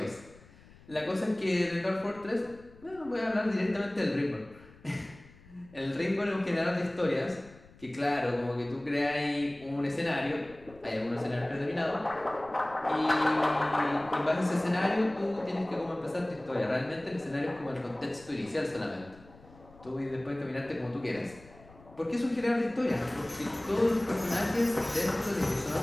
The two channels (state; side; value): noise; left; rumble, 23 dB below the sound